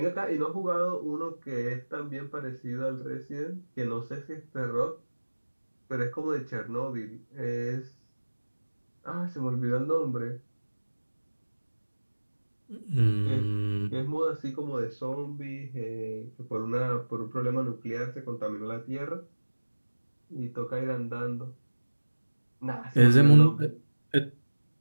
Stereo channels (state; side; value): inverted; both; correlation -1.00